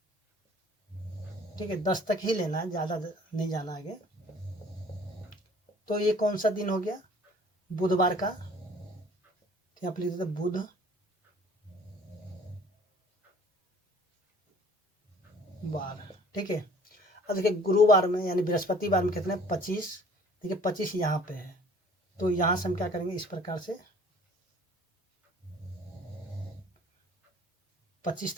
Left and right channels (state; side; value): normal; both; correlation 0.53